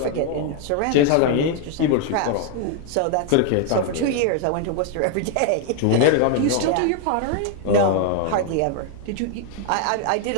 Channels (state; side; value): different; both; correlation 0.00